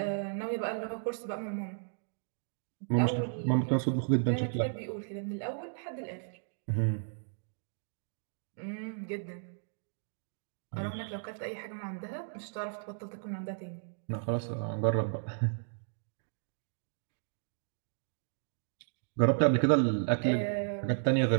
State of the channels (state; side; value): silent; left; digital silence